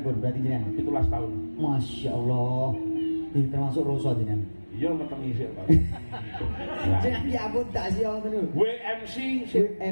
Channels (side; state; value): both; inverted; correlation -1.00